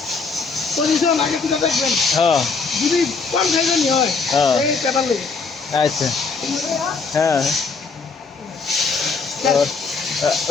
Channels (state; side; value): quieter; right; 4.6 dB